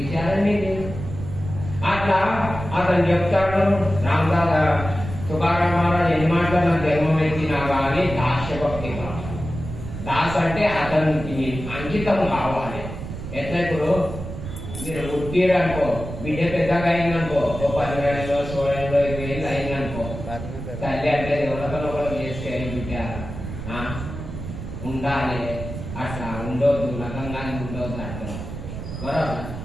లేదు. అట్లా అతను చెప్తాడు రామదాస్ తుకారాం మహారాజ్ ఎన్ని మాటలు నాకు జన్మం ఎత్తినా కానీ దాస్యభక్తి కావాలి. దాస్ అంటే అతనికి అంకితం కావాలి. ఎట్లా ఇప్పుడు మీరు పుట్టిరనుకో, బిడ్డ పెద్దగా అయిందనుకో, ఓ 10 ఏళ్ళు 16 ఏళ్ళు 20 ఏళ్ళు అయిందనుకో, తల్లి అంటే ఎవరికో చేస్తే బిడ్డ ఉండాలి, అట్లా ఉండొద్దు, నగంగానే ఉండొద్దు అట్లా బరాబర్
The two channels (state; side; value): noise; right; rumble, 9 dB below the sound